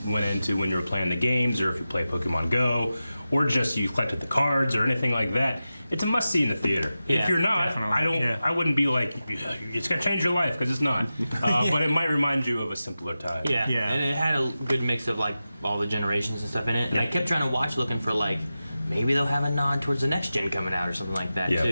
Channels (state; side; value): inverted; both; correlation -0.93